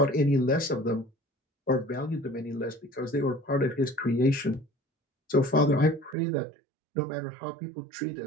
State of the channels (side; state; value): left; drops out; at 6.2 s